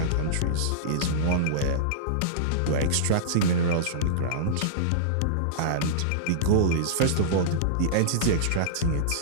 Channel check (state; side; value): different; both; correlation -0.03